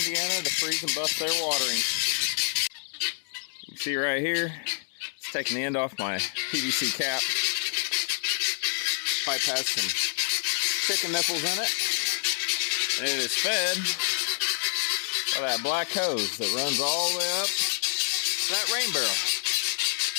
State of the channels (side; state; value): right; silent; 60 dB below the other